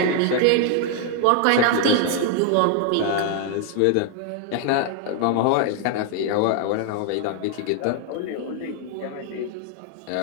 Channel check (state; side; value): different; both; correlation 0.00